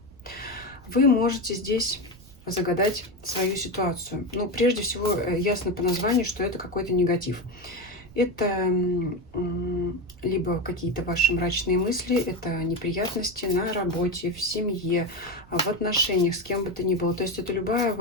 Вы можете здесь загадать свою ситуацию. Ну, прежде всего, ясно по названию, что это какой-то негатив. Это либо какие-то ваши мрачные мысли, это неприятности на работе, в семье, в отношениях, с кем бы то ни было. То есть это любая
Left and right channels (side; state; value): right; noise; rumble, 23 dB below the sound